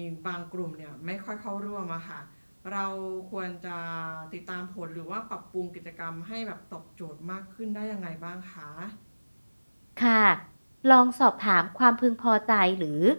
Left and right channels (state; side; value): inverted; both; correlation -1.00